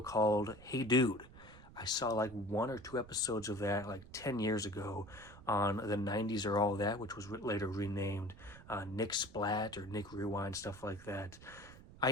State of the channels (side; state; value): right; noise; rumble, 19 dB below the sound